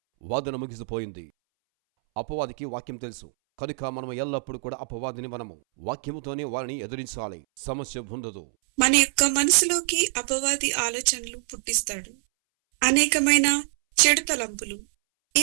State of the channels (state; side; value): silent; left; 61 dB below the other